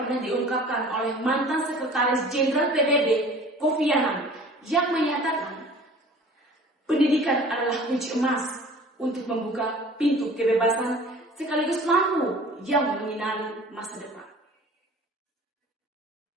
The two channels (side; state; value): both; normal; correlation 0.46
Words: diungkapkan oleh mantan Sekretaris Jenderal PBB, Kofi Annan, yang menyatakan pendidikan adalah kunci emas untuk membuka pintu kebebasan sekaligus lampu yang menyinari masa depan.